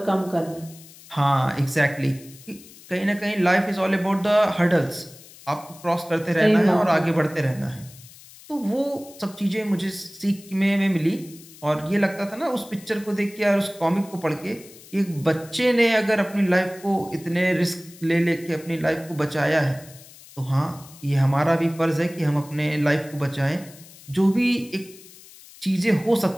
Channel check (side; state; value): left; noise; hiss, 21 dB below the sound